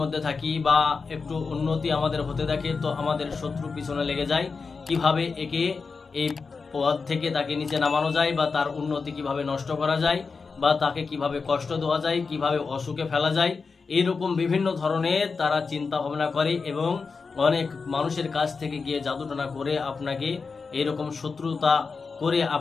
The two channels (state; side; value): quieter; right; 4.8 dB